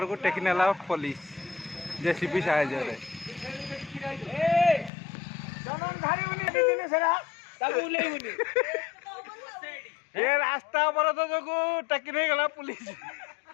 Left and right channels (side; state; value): right; drops out; at 4.9 s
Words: ଟେକି ନେଲା ପୋଲିସ ଜେସିପି ସାହାଯ୍ୟରେ। ଏ ରାସ୍ତା ଅବରୋଧ ଯୋଗୁଁ ଟେକି ନେଇଗଲା ପୁଲିସ।